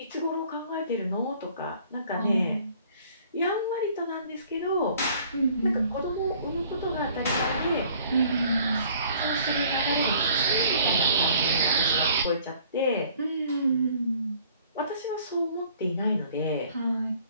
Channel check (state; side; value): inverted; both; correlation -0.56